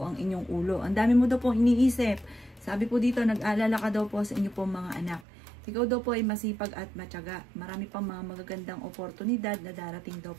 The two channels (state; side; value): drops out; left; at 5.2 s